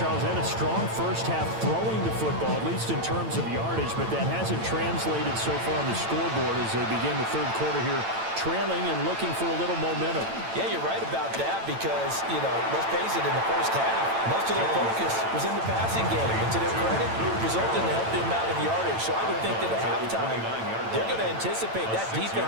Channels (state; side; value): late; left; 8.9 ms